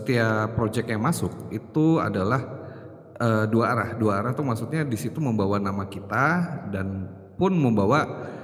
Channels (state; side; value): identical; both; correlation 1.00